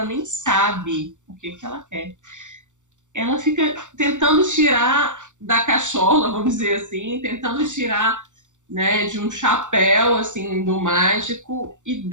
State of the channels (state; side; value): late; left; 0.85 ms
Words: nem sabe o que ela quer. Ela fica tentando tirar da cachola, vamos dizer assim, tentando tirar, né, de um chapéu, assim, do mágico,